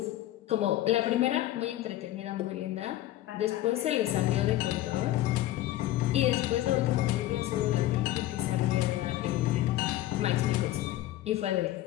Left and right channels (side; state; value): right; quieter; 14.7 dB